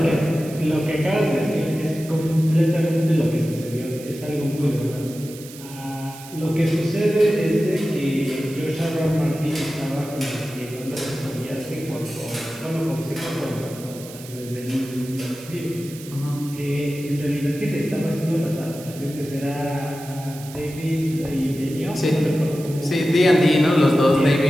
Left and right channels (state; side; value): noise; right; hiss, 17 dB below the sound